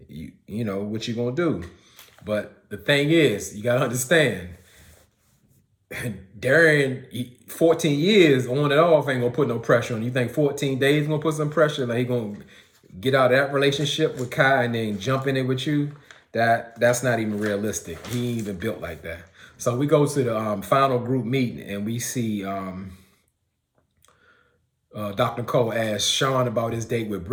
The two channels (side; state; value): both; identical; correlation 1.00